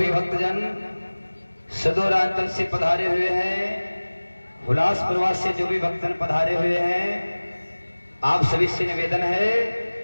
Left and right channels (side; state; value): both; inverted; correlation -1.00